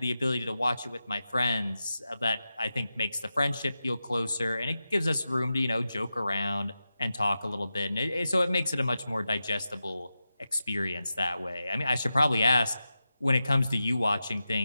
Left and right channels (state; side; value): inverted; both; correlation -0.92